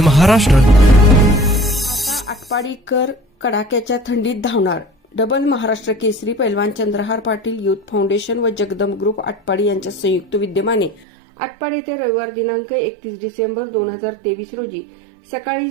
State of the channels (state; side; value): drops out; left; at 11.1 s